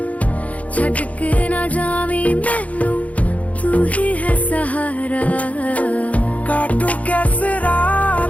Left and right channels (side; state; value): right; late; 0.068 ms